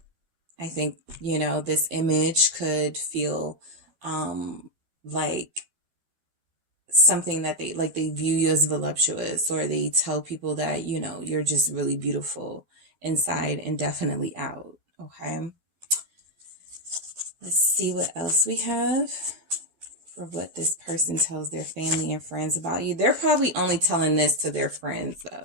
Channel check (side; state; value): left; late; 12 ms